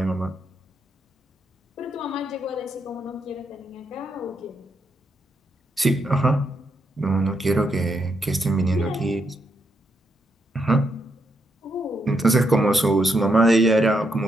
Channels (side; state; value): both; normal; correlation 0.79